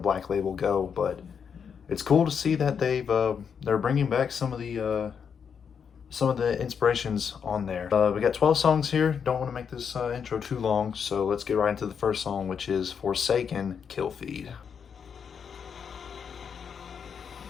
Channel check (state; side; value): quieter; right; 6.9 dB